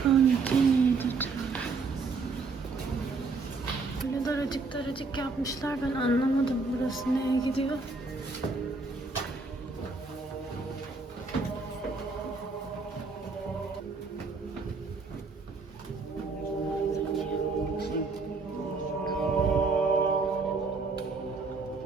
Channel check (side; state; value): left; quieter; 4.1 dB